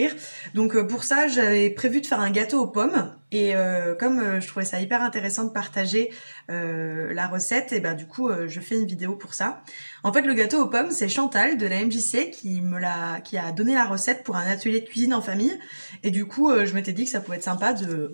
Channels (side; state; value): both; inverted; correlation -1.00